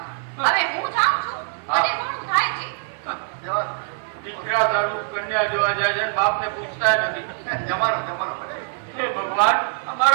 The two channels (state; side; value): silent; left; 56 dB below the other